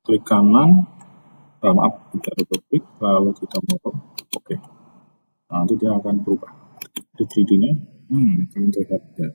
klik kanan, kita double klik, lalu kita mau oke. Nah, nanti dia akan berubah. Di 3D-nya, akan terlihat ya,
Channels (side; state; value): both; inverted; correlation -1.00